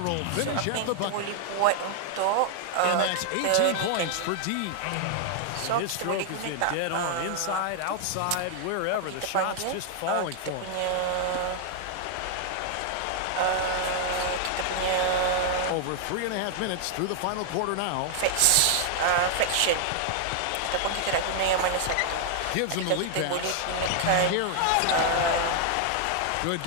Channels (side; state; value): both; different; correlation 0.00